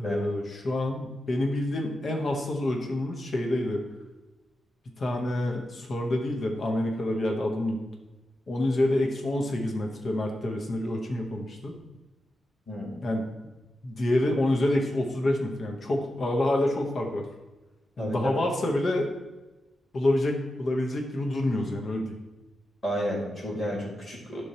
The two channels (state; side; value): normal; both; correlation 0.89